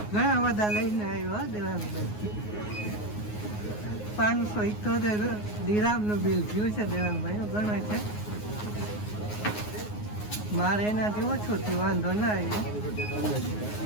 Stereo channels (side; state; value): right; late; 9.5 ms